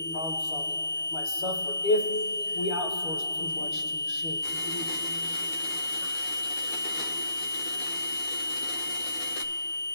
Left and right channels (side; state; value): right; late; 12 ms